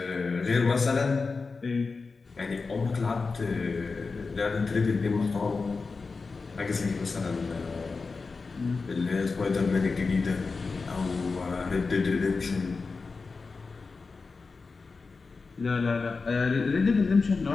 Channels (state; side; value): quieter; right; 4.3 dB